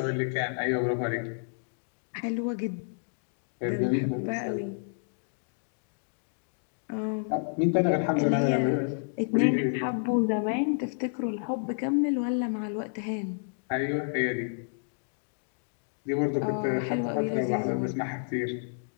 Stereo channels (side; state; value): right; silent; digital silence